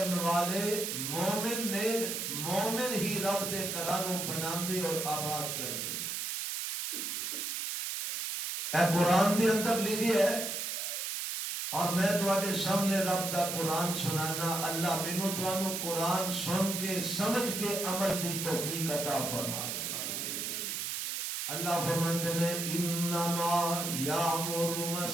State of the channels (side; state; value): right; noise; hiss, 3 dB below the sound